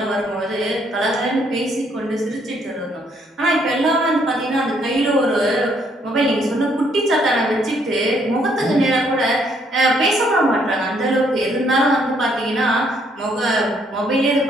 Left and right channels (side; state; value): both; normal; correlation 0.69